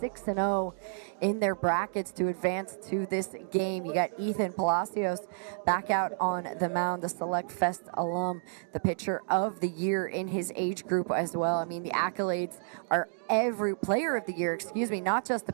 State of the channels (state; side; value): silent; left; digital silence